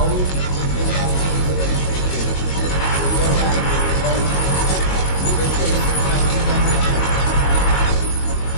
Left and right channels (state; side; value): late; right; 22 ms